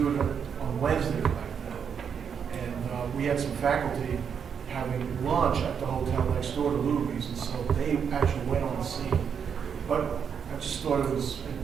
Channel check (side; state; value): left; quieter; 7.2 dB